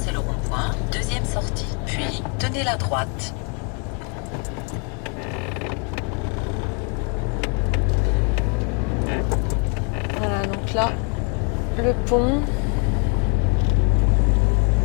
le rond-point, deuxième sortie, puis tenez la droite. Voilà, donc là, le pont.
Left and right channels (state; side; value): quieter; right; 38.1 dB